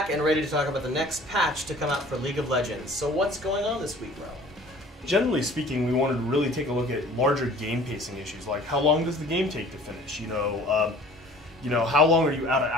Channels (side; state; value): both; normal; correlation 0.48